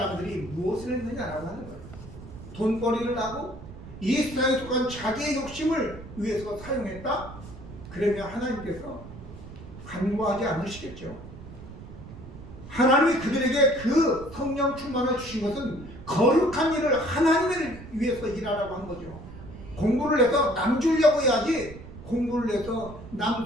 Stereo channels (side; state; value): right; noise; rumble, 15 dB below the sound